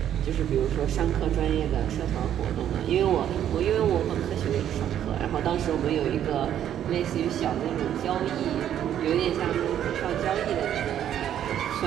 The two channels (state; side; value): quieter; left; 10.5 dB